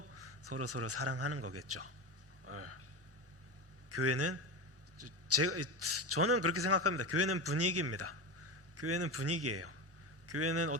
서로 사랑하는 거겠죠. 교회는 저는 그렇게 생각합니다. 교회는 분위기입니다. 교회는 분위기예요. 교회는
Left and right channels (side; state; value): both; normal; correlation 0.21